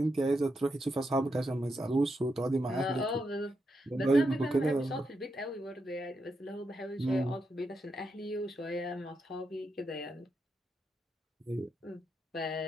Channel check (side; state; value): both; normal; correlation 0.84